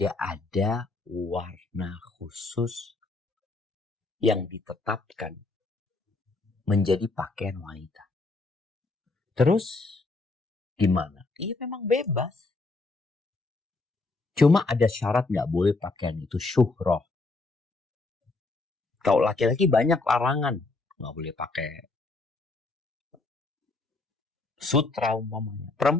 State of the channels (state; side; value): quieter; right; 3.4 dB